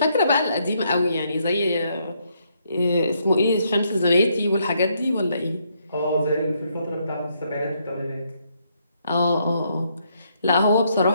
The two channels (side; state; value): both; inverted; correlation -0.74